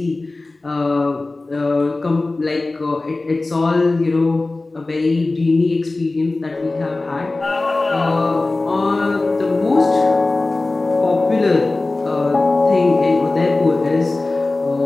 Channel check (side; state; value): right; quieter; 3.2 dB